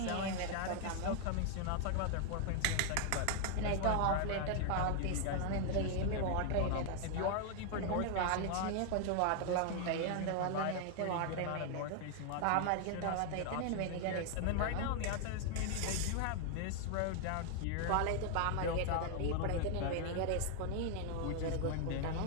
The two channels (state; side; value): different; both; correlation 0.00